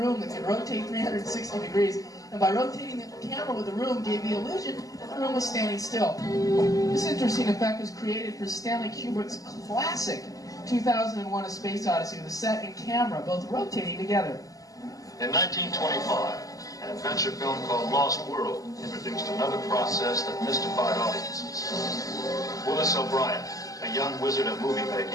that could rotate 360 degrees, and by rotating the camera with the room gave the illusion that the room was standing still. This interesting effect was created for Stanley Kubrick's classic 2001: A Space Odyssey, with the set and camera both rotating together. In 1925, an adventure film called Lost World introduced another process that mystified audiences. Willis O'Brien, a young wizard of movie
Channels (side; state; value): right; late; 0.17 ms